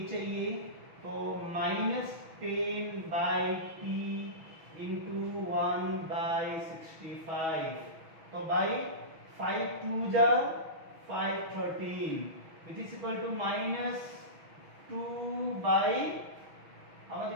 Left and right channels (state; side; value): late; left; 6.2 ms